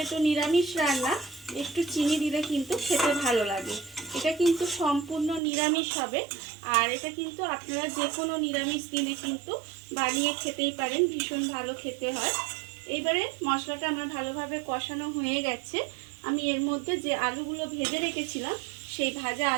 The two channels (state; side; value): drops out; left; at 5.4 s